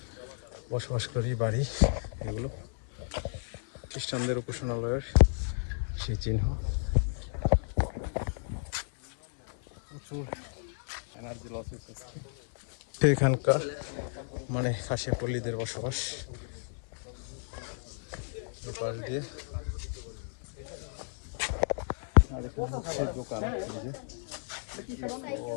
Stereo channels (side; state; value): right; silent; digital silence